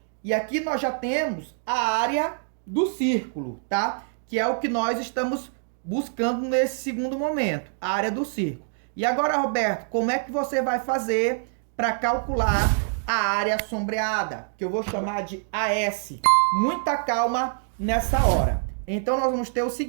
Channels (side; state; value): left; silent; digital silence